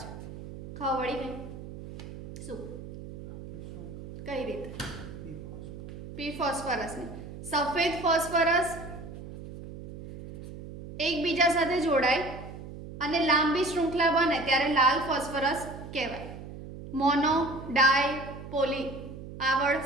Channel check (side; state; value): right; noise; hum, 12 dB below the sound